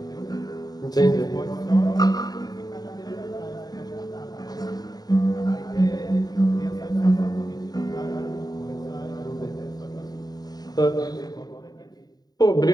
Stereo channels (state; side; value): late; right; 0.19 ms